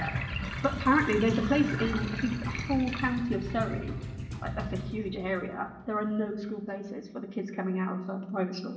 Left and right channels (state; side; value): identical; both; correlation 1.00